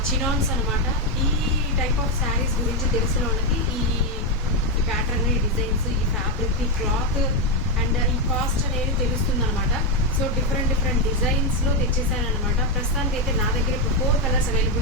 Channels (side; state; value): both; normal; correlation 0.05